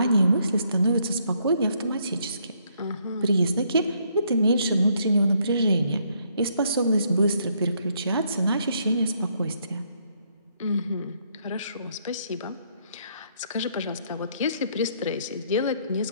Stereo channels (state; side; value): inverted; both; correlation -0.71